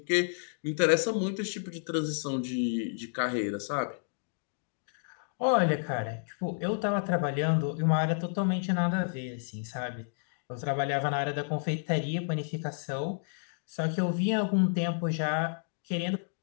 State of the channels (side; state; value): right; silent; digital silence